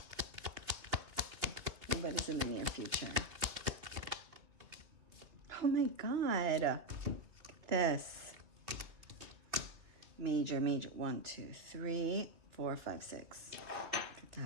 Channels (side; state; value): left; late; 2.9 ms